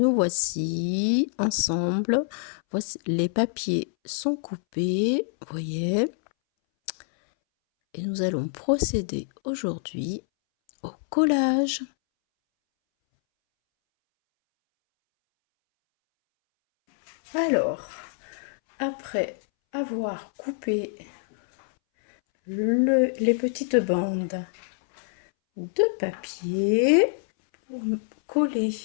voici ensemble. Voici, les papiers sont coupés, vous voyez. Et nous allons procéder aujourd'hui au collage. Alors, après avoir coupé les petites bandes de papier, pour coller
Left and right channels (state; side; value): silent; right; 61 dB below the other